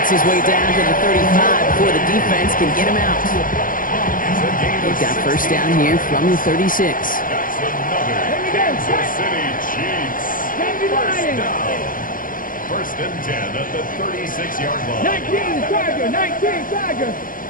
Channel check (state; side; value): late; right; 0.40 ms